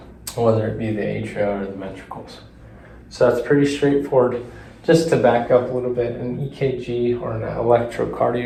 whether it be the atria or the ventricles. So that's pretty straightforward. Just to back up a little bit, an EKG or an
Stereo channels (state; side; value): identical; both; correlation 1.00